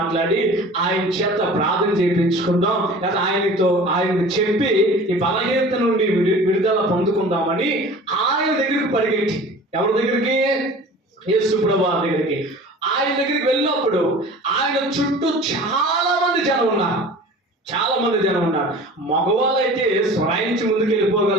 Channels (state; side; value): normal; both; correlation 0.42